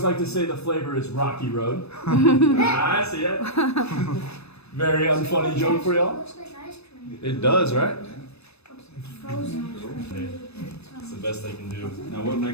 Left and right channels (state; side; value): late; right; 0.79 ms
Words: like to say the flavor is Rocky Road. I see it. Very unfunny joke for y'all. It looks like ice cream. It does, right? Frozen ice cream. It's the best they can do. Now what